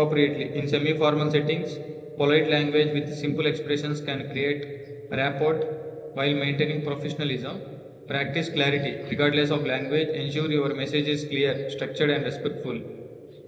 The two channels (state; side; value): identical; both; correlation 1.00